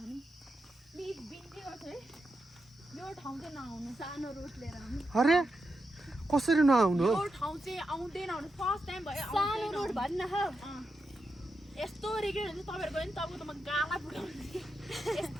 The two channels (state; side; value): normal; both; correlation 0.87